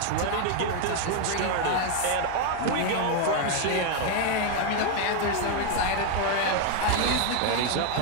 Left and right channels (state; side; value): different; both; correlation 0.01